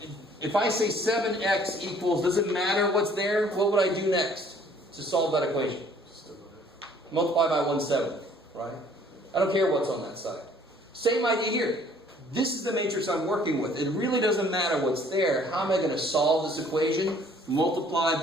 if I say 7x equals, does it matter what's there? What would I do next to solve that equation? Multiply by 1/7, right? I don't care what's on that side. Same idea here. This is the matrix I'm working with. It really doesn't matter what's there. How am I going to solve this equation? Multiply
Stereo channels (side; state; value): both; normal; correlation 0.58